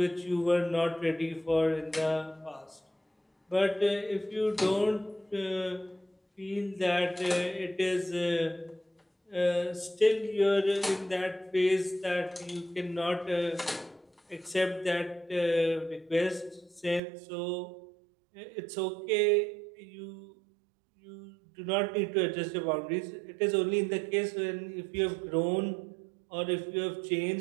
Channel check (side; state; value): left; drops out; at 17.0 s